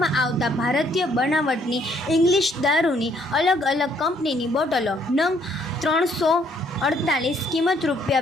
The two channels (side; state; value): both; normal; correlation 0.67